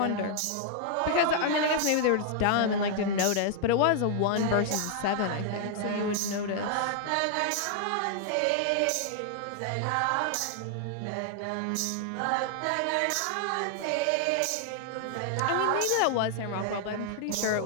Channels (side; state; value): both; different; correlation 0.00